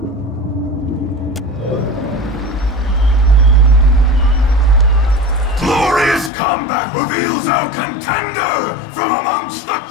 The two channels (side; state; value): right; drops out; at 6.3 s